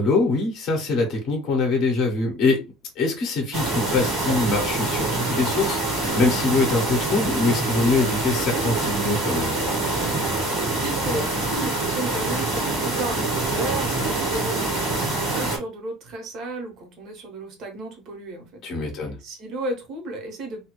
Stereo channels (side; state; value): both; normal; correlation 0.47